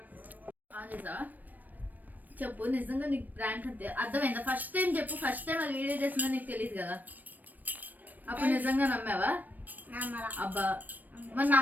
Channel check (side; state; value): left; late; 0.085 ms